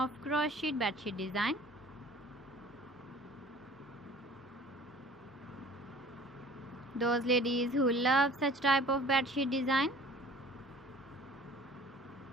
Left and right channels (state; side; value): normal; both; correlation 0.48